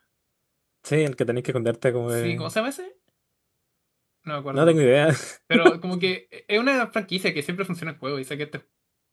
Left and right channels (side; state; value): both; identical; correlation 1.00